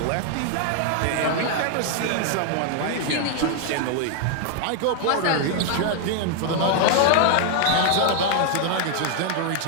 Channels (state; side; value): different; both; correlation 0.00